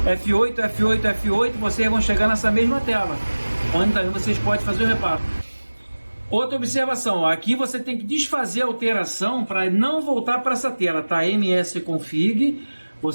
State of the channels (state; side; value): inverted; both; correlation -1.00